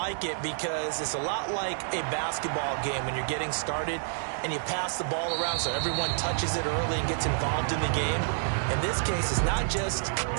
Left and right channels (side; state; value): left; silent; digital silence